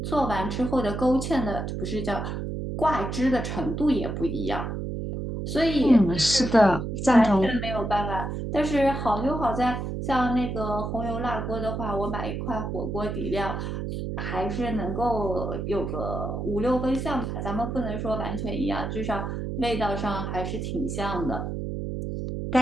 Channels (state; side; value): noise; right; hum, 4 dB below the sound